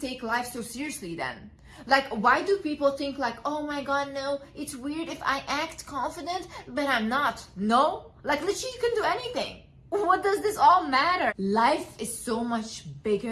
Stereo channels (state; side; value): identical; both; correlation 1.00